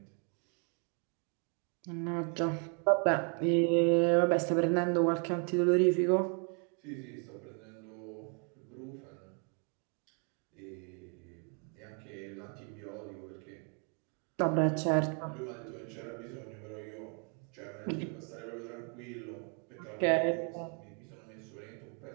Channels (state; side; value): quieter; left; 38.7 dB